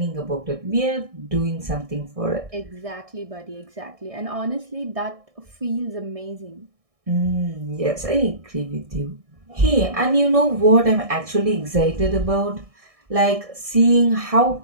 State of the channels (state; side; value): late; left; 1.6 ms